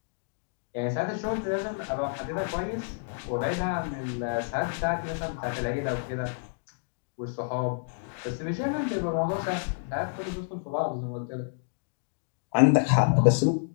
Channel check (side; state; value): right; silent; digital silence